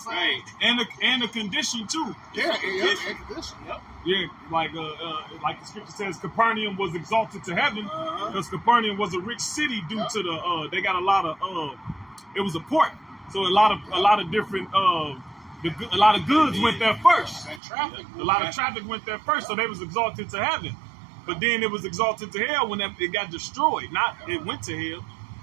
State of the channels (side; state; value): left; drops out; at 17.6 s